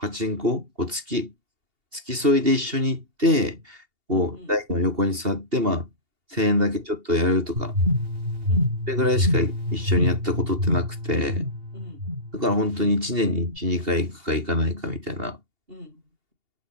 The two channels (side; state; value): left; late; 2.8 ms